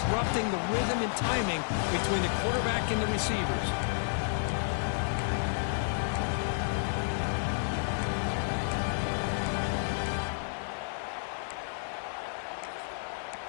the rhythm and timing between the quarterback and the receivers.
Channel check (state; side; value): silent; right; digital silence